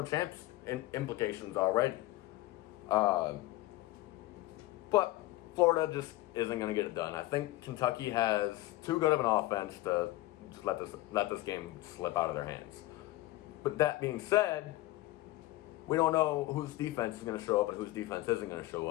champs in implications already. But Florida just isn't going to get it done. I think Kentucky has too good of an offense to just let this game slip out of their hands. But that being said, we don't know whose defense is going to show up and whose defense isn't going to show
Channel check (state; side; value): quieter; right; 17.9 dB